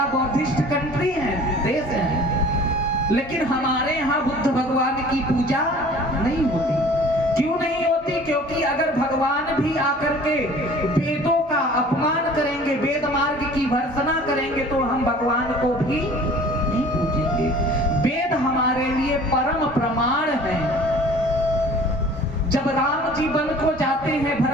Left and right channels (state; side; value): normal; both; correlation 0.48